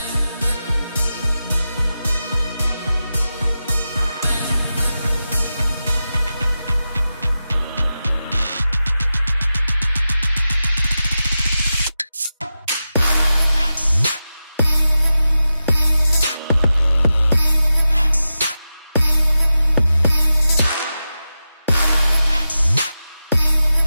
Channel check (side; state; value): both; inverted; correlation -0.92